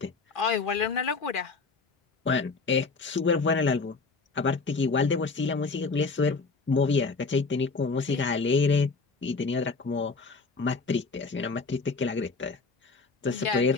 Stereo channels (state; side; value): quieter; right; 4.2 dB